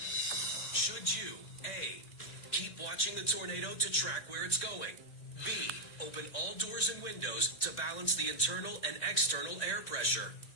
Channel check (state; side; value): late; right; 1.8 ms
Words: Should you, A, keep watching the tornado to track where it's going? B, open all doors and windows to balance the internal and external air pressure?